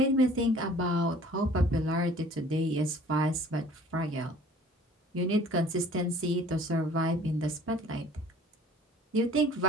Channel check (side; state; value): both; normal; correlation 0.50